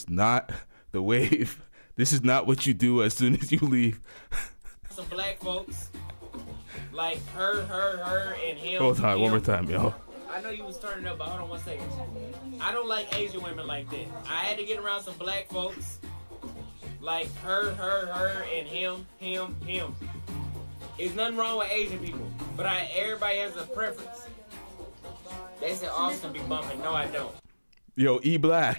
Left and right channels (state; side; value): inverted; both; correlation -1.00